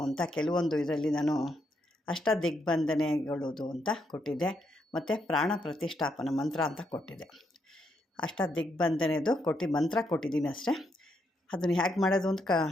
ಅಂತ ಕೆಲವೊಂದು ಇದರಲ್ಲಿ ನಾನು ಅಷ್ಟದಿಗ್ಬಂಧನೆಗಳದು ಅಂತ ಕೊಟ್ಟಿದ್ದೆ, ಮತ್ತು ಪ್ರಾಣ ಪ್ರತಿಷ್ಠಾಪನ ಮಂತ್ರ ಅಂತ ಕೊಟ್ಟಿದ್ದೆ. ಅಷ್ಟದಿಗ್ಬಂಧನೆದು ಮಂತ್ರ ಕೊಟ್ಟಿದ್ದೀನಿ ಅಷ್ಟೇ. ಅದನ್ನು ಹೇಗೆ ಮಾಡೋದು ಅಂತ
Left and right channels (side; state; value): both; normal; correlation 0.78